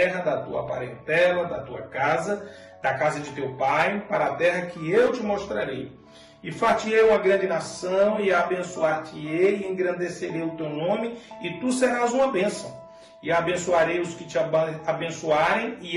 da tua parentela, da tua casa, da casa de teu pai, para a terra que eu te mostrarei. E far-te-ei uma grande nação, e abençoar-te-ei, e engrandecerei o teu nome, e tu serás uma bênção. E abençoarei os que te abençoarem,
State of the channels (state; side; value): identical; both; correlation 1.00